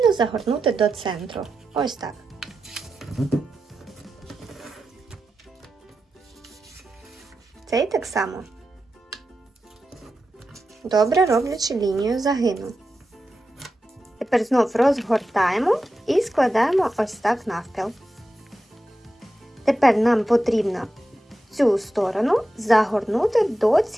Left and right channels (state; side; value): normal; both; correlation 0.90